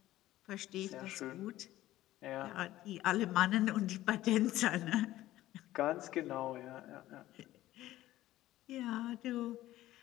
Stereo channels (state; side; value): quieter; right; 15.1 dB